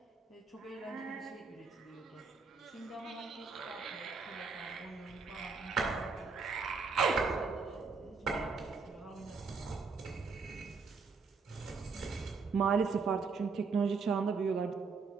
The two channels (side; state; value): left; quieter; 4.8 dB